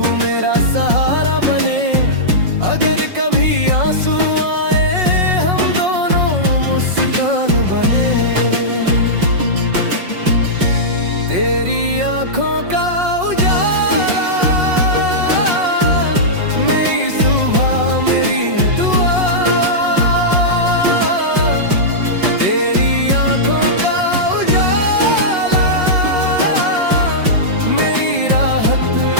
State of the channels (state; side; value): late; left; 5.5 ms